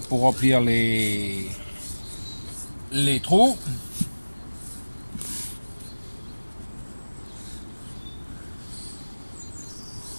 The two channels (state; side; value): inverted; both; correlation -1.00